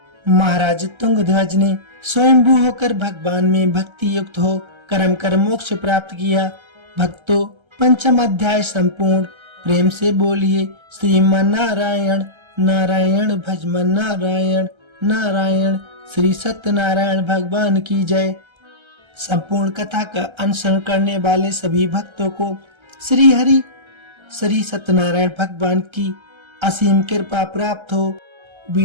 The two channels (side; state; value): left; late; 1.3 ms